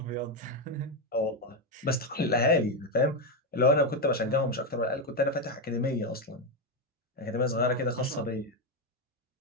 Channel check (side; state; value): both; normal; correlation 0.08